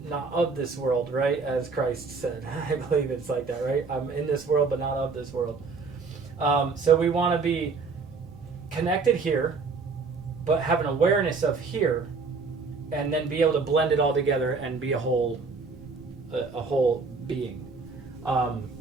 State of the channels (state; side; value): quieter; left; 4.4 dB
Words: not of this world, right? As Christ said. I believe it's like that, right? I'm in this world, but not of this world. So we want to be connected here, but have an awareness of here, and then be able to blend it all together and be a whole being.